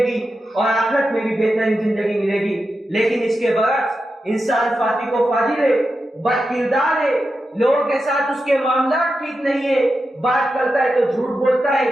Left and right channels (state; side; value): normal; both; correlation 0.89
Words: گی اور آخرت میں بھی بہترین زندگی ملے گی۔ لیکن اس کے برعکس انسان فاسق و فاجر ہے، بد کردار ہے، لوگوں کے ساتھ اس کے معاملات ٹھیک نہیں ہے، بات کرتا ہے تو جھوٹ بولتا ہے،